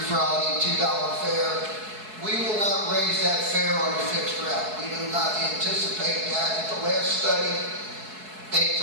Friday, $2 fare. We will not raise that fare on a fixed route. We do not anticipate that. At the last study, they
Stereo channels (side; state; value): left; late; 4.7 ms